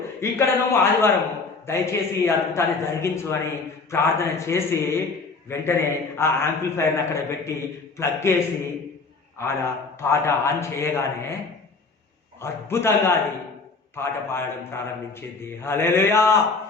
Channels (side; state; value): right; quieter; 4.2 dB